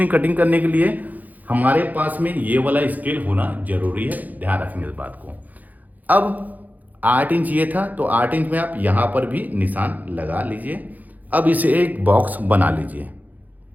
कटिंग करने के लिए हमारे पास में ये वाला स्केल होना जरूरी है, ध्यान रखेंगे इस बात को। अब 8 इंच ये था, तो 8 इंच में आप यहाँ पर भी निशान लगा लीजिए। अब इसे एक बॉक्स बना लीजिए।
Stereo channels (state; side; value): late; left; 0.081 ms